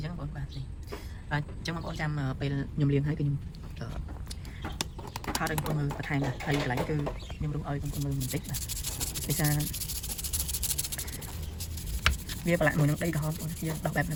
ញ្ចឹងបងបាទអញ្ចឹងបងប្អូនចាំពេលខ្ញុំលាងហើយគឺខ្ញុំថតឲ្យបងប្អូនមើលបន្ថែមហើយកន្លែងគឺខ្ញុំរុះឲ្យបងប្អូនមើលបន្តិចបាទដោយសារវាប្រឡាក់មួយនឹងដីក្រហមបងយើងដោះបែបហ្នឹ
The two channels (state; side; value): identical; both; correlation 1.00